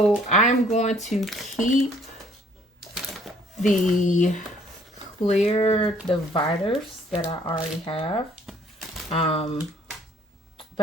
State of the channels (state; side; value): normal; both; correlation 0.61